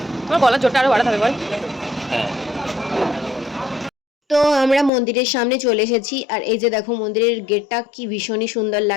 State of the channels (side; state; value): right; drops out; at 4.9 s